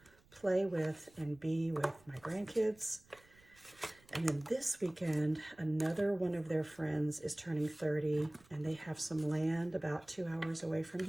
play with and be with my grandkids. And then this weekend, another one of their friends is turning 30, and they have some land about 2 hours away from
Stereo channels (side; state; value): right; noise; rumble, 28 dB below the sound